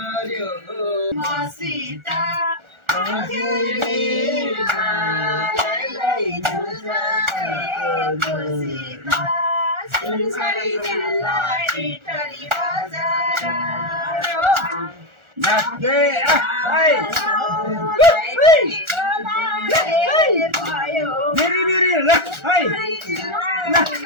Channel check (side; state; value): left; late; 1.4 ms